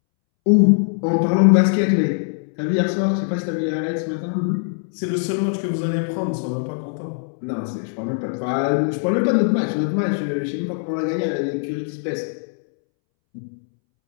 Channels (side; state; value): right; silent; 65 dB below the other